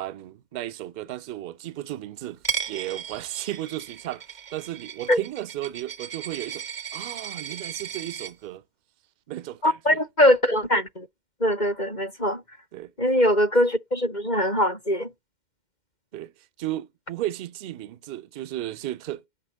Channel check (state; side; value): late; right; 2.1 ms